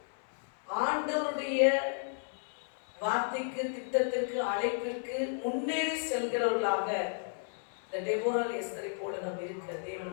ஆண்டவருடைய வார்த்தைக்கு, திட்டத்திற்கு, அழைப்பிற்கு முன்னேறி செல்கிறவர்களாக இந்த டெபோராள் எஸ்தரை போல நாம் இருக்க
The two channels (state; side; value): silent; right; 56 dB below the other